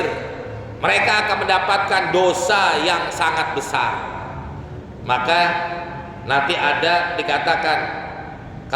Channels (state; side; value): identical; both; correlation 1.00